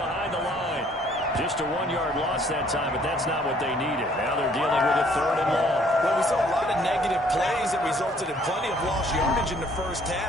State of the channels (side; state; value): both; normal; correlation 0.61